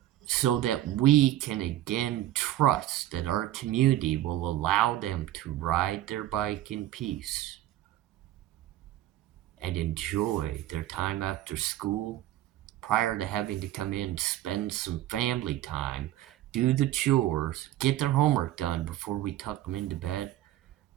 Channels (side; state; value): left; quieter; 13.9 dB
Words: so that we can again trust that our community will allow them to ride their bike in peace and enjoy their time after school prior to having to come in, spend some family time, do the chores, get their homework done before we tuck them into bed,